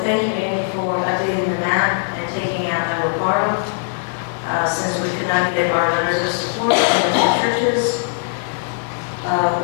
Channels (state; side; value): silent; right; digital silence